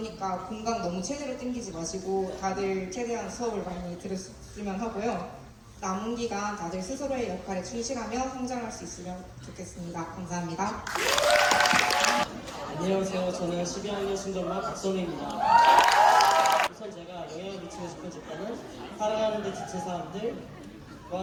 공강 너무 최대로 땡기지 마시고 다들 최대한 수업을 많이 들었으면 하고요. 남은 기간 다들 스스로의 역할에 충실하며 성장할 수 있으면 좋겠습니다. 감사합니다. 안녕하세요. 저는 12학년 신정반 박선우입니다. 우선 제가 영향을 미치고 싶은 집단은 살아가는 데 지친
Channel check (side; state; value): both; identical; correlation 1.00